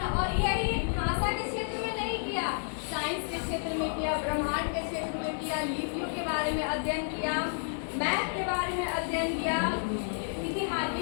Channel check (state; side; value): silent; right; digital silence